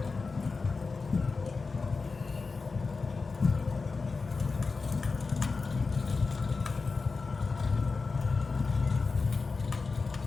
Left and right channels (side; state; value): right; quieter; 4.3 dB